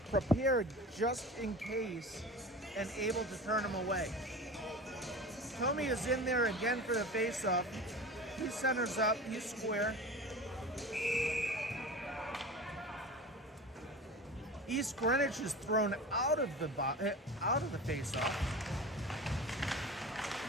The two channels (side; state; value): both; normal; correlation 0.33